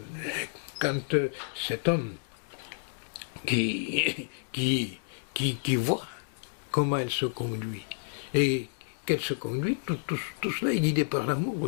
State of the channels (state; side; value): silent; right; digital silence